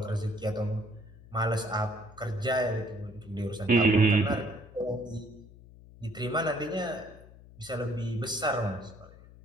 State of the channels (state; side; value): noise; left; hum, 20 dB below the sound